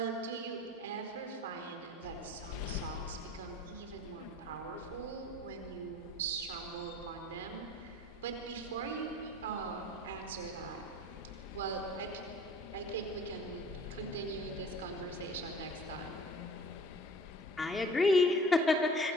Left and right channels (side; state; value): both; normal; correlation 0.46